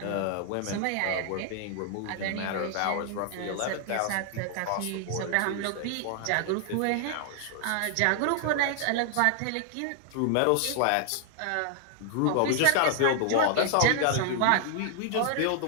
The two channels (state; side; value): different; both; correlation 0.00